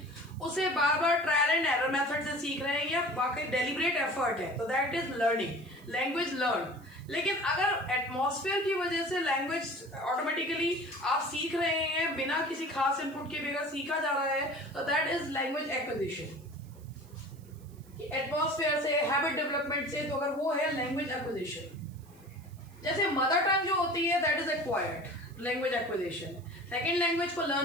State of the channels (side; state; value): right; noise; hiss, 28 dB below the sound